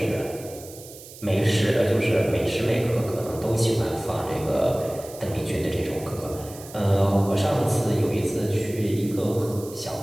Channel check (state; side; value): noise; right; hiss, 17 dB below the sound